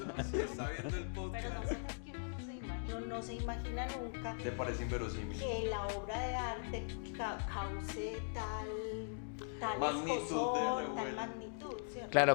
si está viendo el podcast. Uno no se imagina nunca Le parece inverosímil. que la obra de arte cause tal Magnitud escosor, de- tal magnitud, ¿cierto?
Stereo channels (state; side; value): silent; right; digital silence